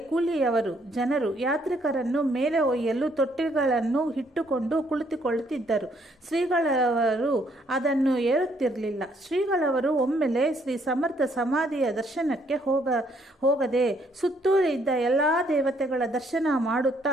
ಕೂಲಿಯವರು ಜನರು ಯಾತ್ರಿಕರನ್ನು ಮೇಲೆ ಒಯ್ಯಲು ತೊಟ್ಟಿಗಳನ್ನು ಇಟ್ಟುಕೊಂಡು ಕುಳಿತುಕೊಳ್ಳುತ್ತಿದ್ದರು. ಶ್ರೀಗಳವರು ಅದನ್ನು ಏರುತ್ತಿರಲಿಲ್ಲ. ಶ್ರೀಗಳವರು ಒಮ್ಮೆಲೆ ಶ್ರೀ ಸಮರ್ಥ ಸಮಾಧಿಯ ದರ್ಶನಕ್ಕೆ ಹೋಗದೆ ಸುತ್ತೂರು ಇದ್ದ ಎಲ್ಲ ದೇವತೆಗಳ ದರ್ಶನ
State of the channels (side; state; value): both; normal; correlation 0.68